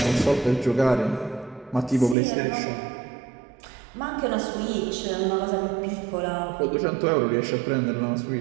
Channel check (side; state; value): left; drops out; at 2.1 s